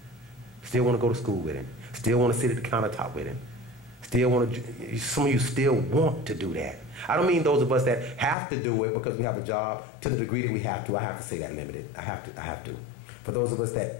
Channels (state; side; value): drops out; right; at 8.3 s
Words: still want to go to school with him, still want to sit at the countertop with him. Still want to, some of you still want to do that. I don't mean those of us that have to do it because we have a job to the degree that we have to. I have to say that limited. I have to. For those of us